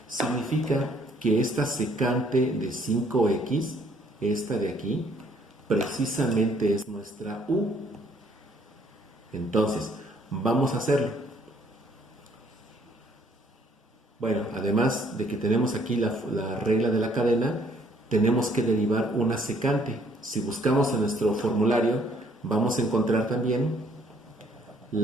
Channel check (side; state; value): both; normal; correlation 0.64